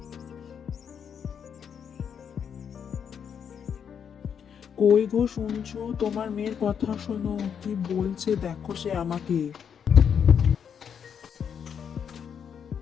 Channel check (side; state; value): right; quieter; 7.6 dB